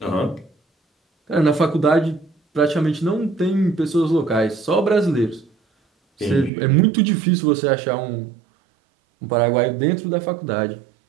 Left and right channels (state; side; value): drops out; left; at 6.5 s